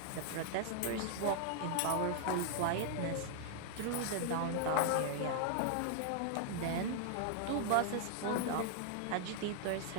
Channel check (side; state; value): both; different; correlation -0.01